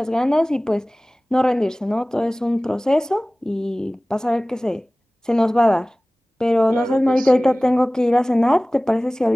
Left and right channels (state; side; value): normal; both; correlation 0.98